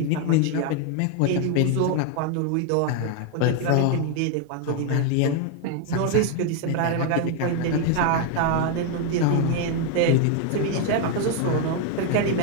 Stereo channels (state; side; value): different; both; correlation 0.01